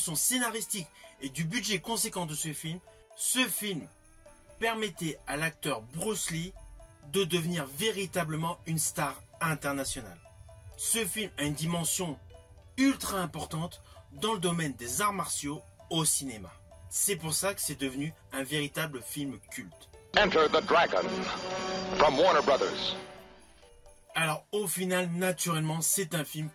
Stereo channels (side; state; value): both; identical; correlation 1.00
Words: scénaristique et du budget conséquent de ce film permettait à l'acteur Bruce Lee de devenir véritablement une star internationale. Ce film a une dimension ultra importante dans le domaine des arts martiaux au cinéma. C'est pour ça que c'est devenu un véritable film culte. Enter the Dragon from Warner Brothers. Alors au final, naturellement, c'est un film